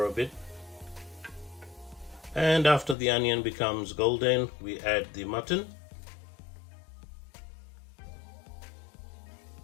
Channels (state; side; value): drops out; right; at 3.0 s